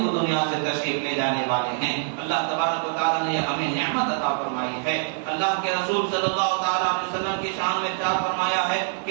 وہ دنیا سے تشریف لے جانے والے ہیں. اللہ تبارک و تعالیٰ نے ہمیں نعمت عطا فرمائی ہے. اللہ کے رسول صلی اللہ تعالیٰ علیہ وسلم کی شان میں ارشاد فرمایا ہے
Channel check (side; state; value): left; silent; digital silence